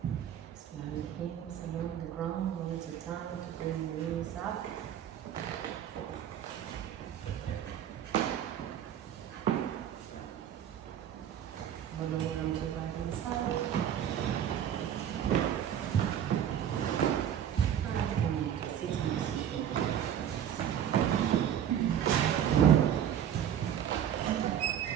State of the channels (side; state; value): left; quieter; 9.8 dB